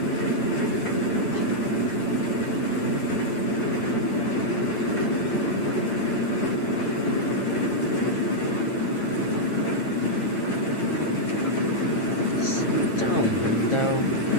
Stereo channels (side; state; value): right; late; 8.9 ms